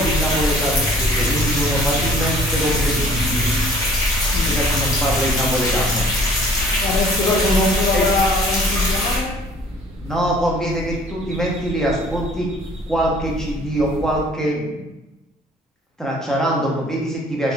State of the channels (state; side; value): normal; both; correlation 0.54